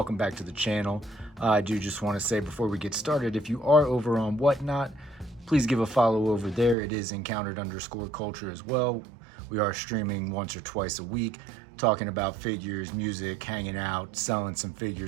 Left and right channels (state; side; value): drops out; left; at 6.8 s